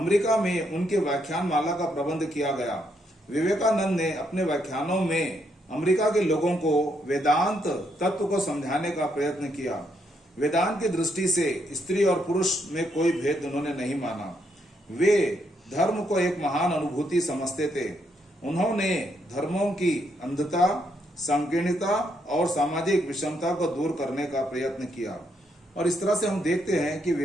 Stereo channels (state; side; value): normal; both; correlation 0.76